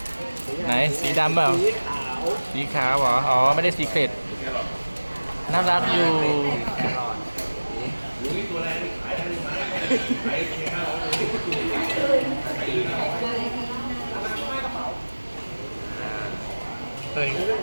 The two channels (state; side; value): inverted; both; correlation -1.00